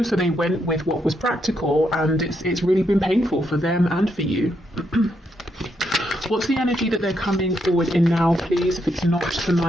they went with what was practical, and it's really been painful for them and for you. What's the energy that they're coming forward in now, please? If it's not the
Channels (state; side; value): normal; both; correlation 0.79